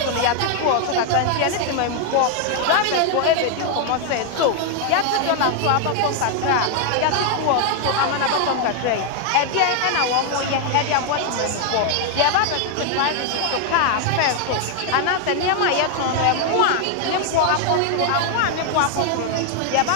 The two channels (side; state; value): both; different; correlation 0.00